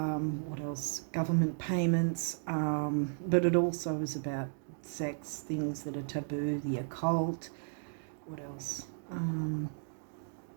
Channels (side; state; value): left; silent; digital silence